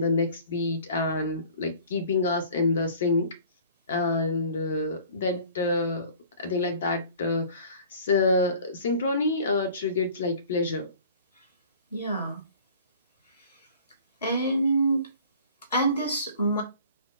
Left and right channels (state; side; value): inverted; both; correlation -0.48